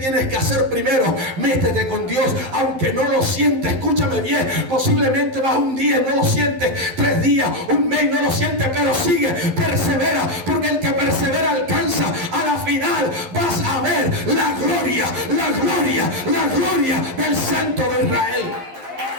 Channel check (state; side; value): late; left; 11 ms